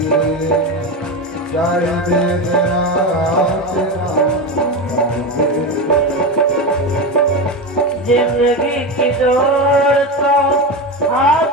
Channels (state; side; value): normal; both; correlation 0.18